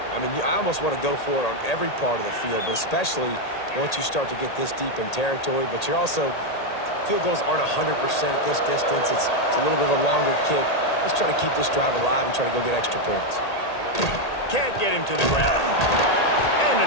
I mean, I almost want to go for it on every part of the field, but especially once you start to get this deep in territory. But you're also, field goals aren't 100% at this distance. It's a little bit of a longer kick. Let's try to keep this drive alive and try to go get extra points. Can't get him to the ground. And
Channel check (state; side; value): late; right; 1.8 ms